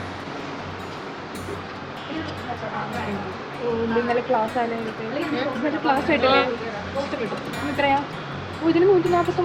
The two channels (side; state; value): both; identical; correlation 1.00